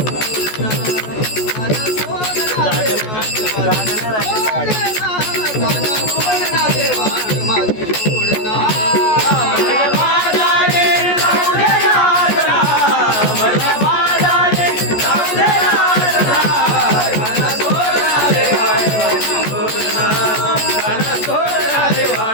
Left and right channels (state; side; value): late; right; 14 ms